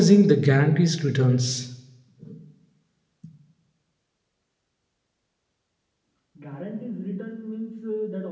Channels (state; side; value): identical; both; correlation 1.00